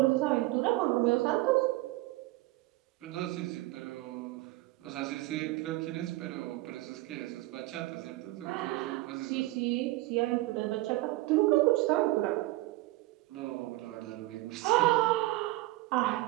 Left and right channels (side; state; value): left; quieter; 19.2 dB